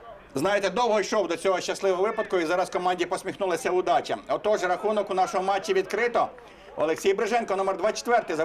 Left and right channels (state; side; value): identical; both; correlation 1.00